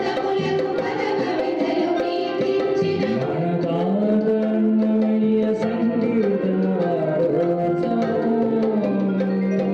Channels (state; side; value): identical; both; correlation 1.00